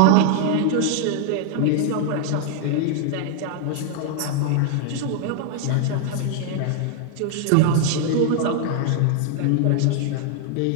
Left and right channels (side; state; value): both; different; correlation 0.00